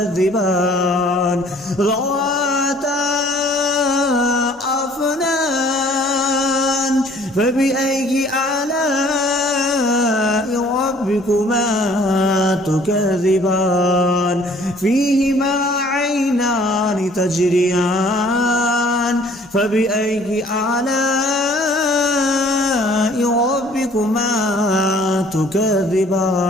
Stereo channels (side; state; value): both; normal; correlation 0.56